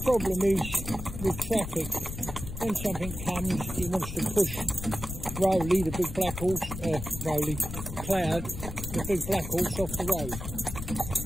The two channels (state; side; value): noise; left; rumble, 8 dB below the sound